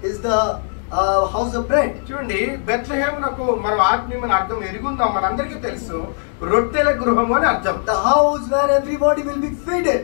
is the house of bread. చూడండి బెత్లెహేమునకు మనం ఆత్మీయమైన అర్థం ఎరుగుందాం, మనందరికీ తెలుసు, రొట్టెల గృహం అని అర్థం. The house where everybody will be fed.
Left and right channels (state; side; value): silent; right; 66 dB below the other